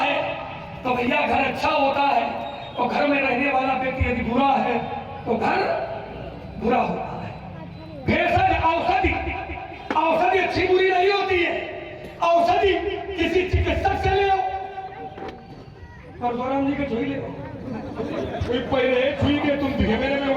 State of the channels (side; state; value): both; identical; correlation 1.00